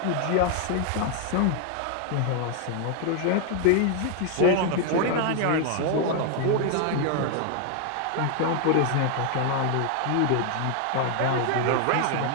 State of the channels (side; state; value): both; different; correlation 0.00